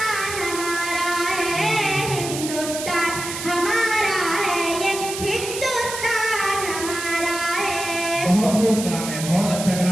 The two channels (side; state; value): right; noise; hiss, 7 dB below the sound